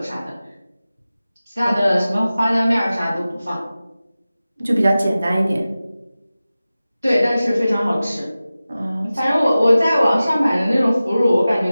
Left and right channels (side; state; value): both; inverted; correlation -0.96